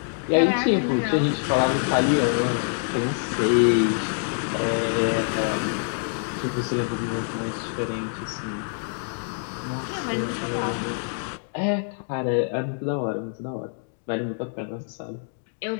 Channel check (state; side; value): silent; right; digital silence